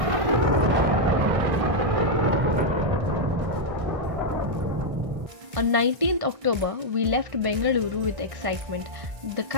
On 19th October, we left Bengaluru with excitement, the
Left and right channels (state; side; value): late; left; 1.6 ms